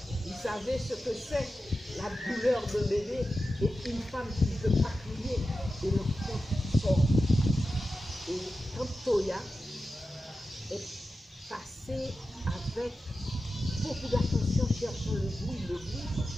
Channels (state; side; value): normal; both; correlation 0.92